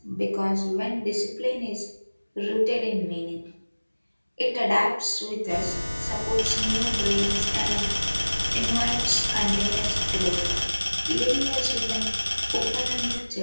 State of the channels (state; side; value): inverted; both; correlation -1.00